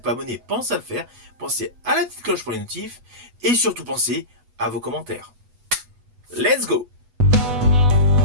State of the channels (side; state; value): left; late; 8.1 ms